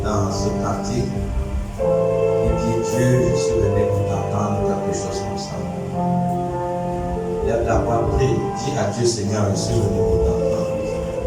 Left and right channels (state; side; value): identical; both; correlation 1.00